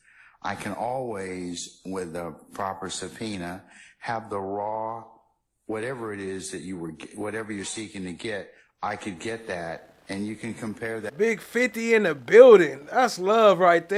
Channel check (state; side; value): identical; both; correlation 1.00